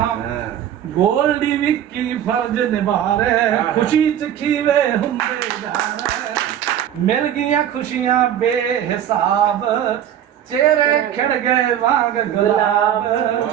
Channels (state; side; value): quieter; left; 10.4 dB